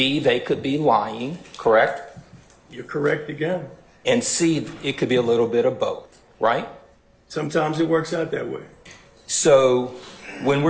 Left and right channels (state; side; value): identical; both; correlation 1.00